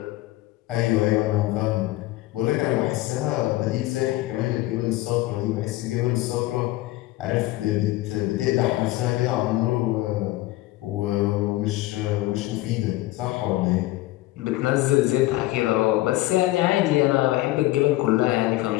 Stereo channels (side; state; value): right; quieter; 17.5 dB